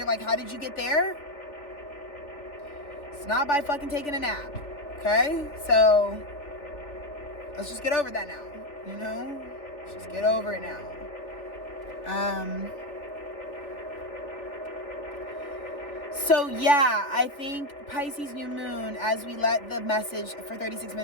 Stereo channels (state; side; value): late; right; 3.4 ms